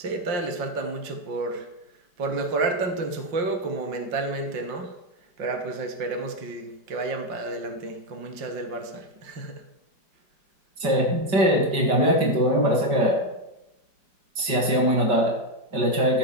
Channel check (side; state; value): left; late; 5.2 ms